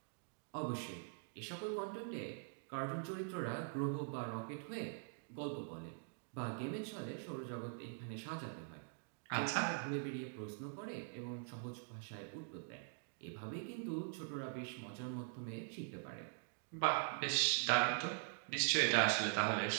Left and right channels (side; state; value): left; silent; digital silence